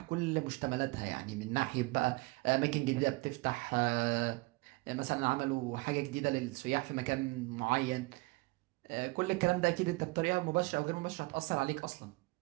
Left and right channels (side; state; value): left; quieter; 24.4 dB